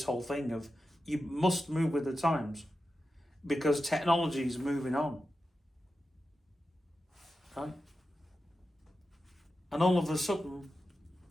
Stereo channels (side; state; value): both; normal; correlation 0.91